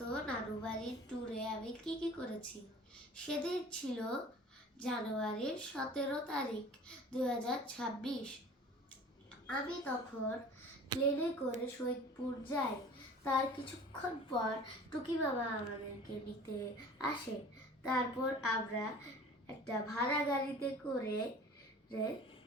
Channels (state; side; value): normal; both; correlation 0.44